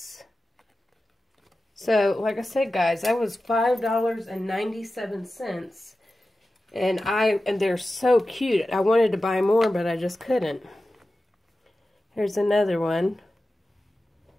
So, like I said, guys, that was $5.97. And they're so cute. I wanted to buy more, but I just couldn't. Here's another one.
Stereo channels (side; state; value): both; normal; correlation 0.94